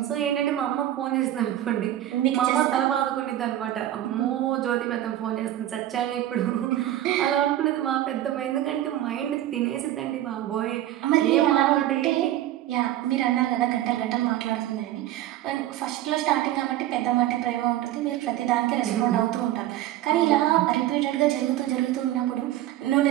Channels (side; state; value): left; quieter; 13.3 dB